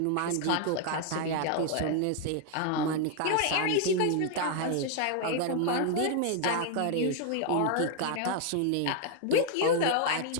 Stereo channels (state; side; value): different; both; correlation 0.00